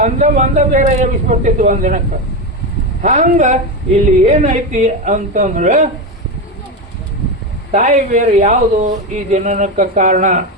ಒಂದ ಬೇರೆ ಎಬ್ಬಿಸ್ಬಿಡ್ತಿತ್ತು ಒಂದಿನಕ್ಕೆ. ಹಂಗ ಇಲ್ಲಿ ಏನೈತಿ ಅಂತಂದ್ರೆ ತಾಯಿ ಬೇರೆ ಯಾವುದು ಈ ಜನನಕ್ಕೆ ಕಾರಣ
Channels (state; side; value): normal; both; correlation 0.14